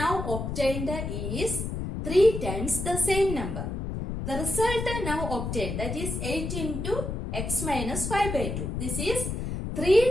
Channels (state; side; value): noise; left; rumble, 4 dB below the sound